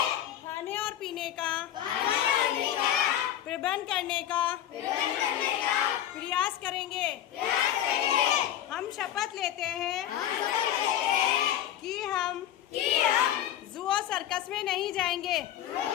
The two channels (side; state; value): right; quieter; 11.5 dB